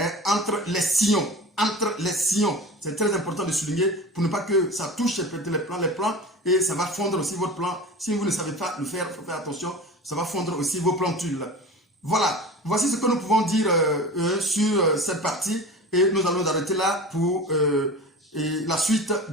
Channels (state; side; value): normal; both; correlation 0.34